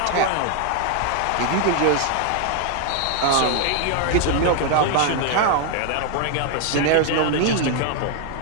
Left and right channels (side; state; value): both; different; correlation 0.00